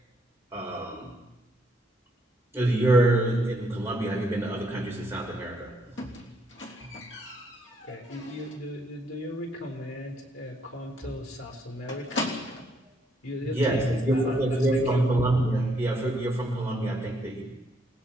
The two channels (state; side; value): normal; both; correlation 0.72